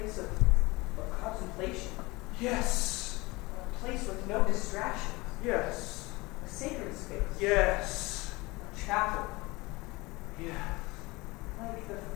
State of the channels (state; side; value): quieter; right; 23.0 dB